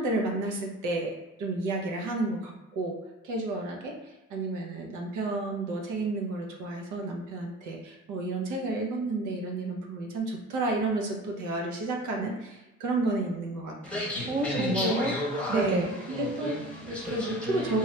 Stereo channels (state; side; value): normal; both; correlation 0.40